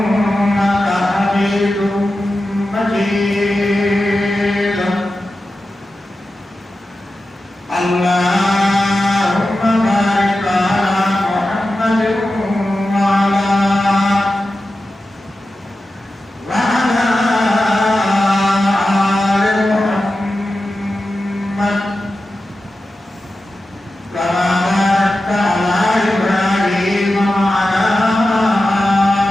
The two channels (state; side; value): normal; both; correlation 0.92